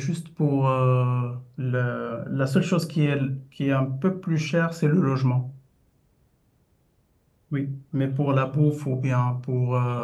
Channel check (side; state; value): both; identical; correlation 1.00